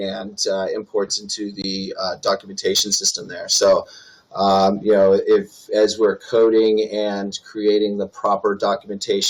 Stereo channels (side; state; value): both; identical; correlation 1.00